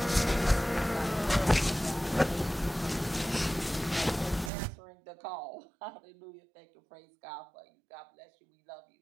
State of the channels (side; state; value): left; drops out; at 4.5 s